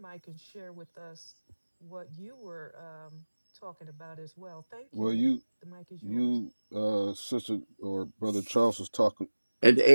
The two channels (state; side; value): inverted; both; correlation -1.00